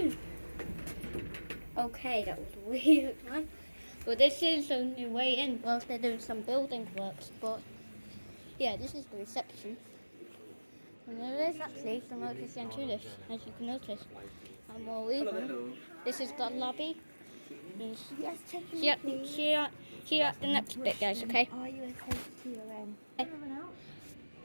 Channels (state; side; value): inverted; both; correlation -1.00